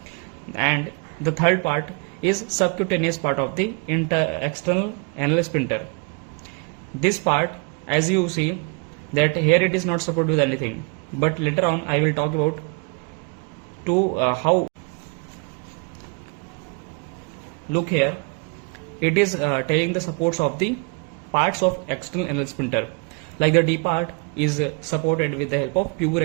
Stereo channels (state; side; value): quieter; left; 34.2 dB